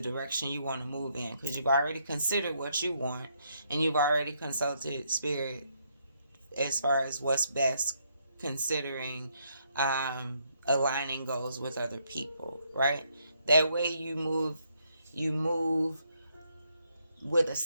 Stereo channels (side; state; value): both; inverted; correlation -0.74